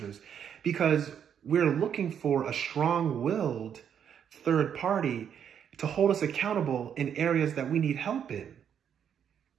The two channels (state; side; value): quieter; left; 8.5 dB